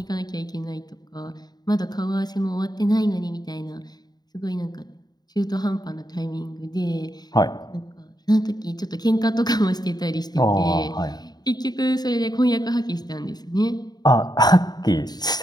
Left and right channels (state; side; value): late; right; 0.20 ms